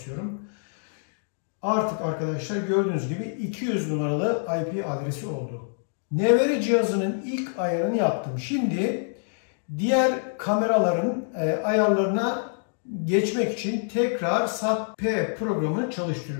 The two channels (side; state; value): right; silent; digital silence